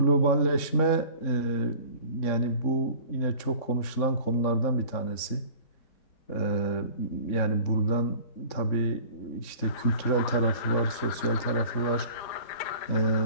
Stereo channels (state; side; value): late; right; 3.7 ms